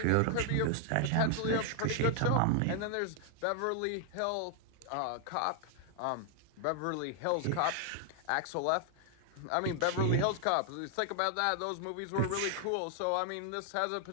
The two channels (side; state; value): both; different; correlation 0.00